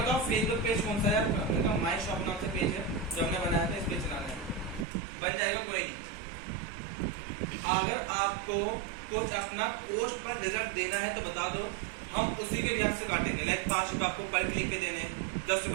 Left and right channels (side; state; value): left; drops out; at 4.9 s